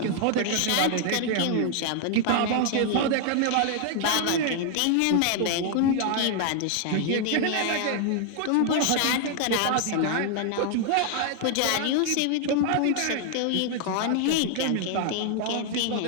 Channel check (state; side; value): different; both; correlation 0.00